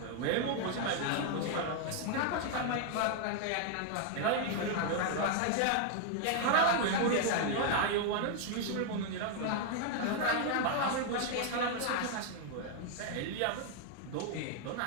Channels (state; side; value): different; both; correlation 0.00